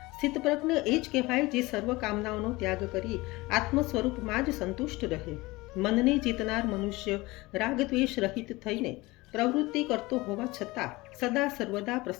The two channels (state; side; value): quieter; right; 21.5 dB